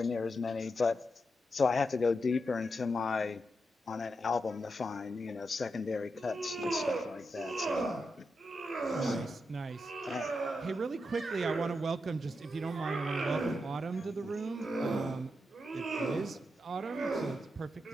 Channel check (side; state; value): both; normal; correlation 0.86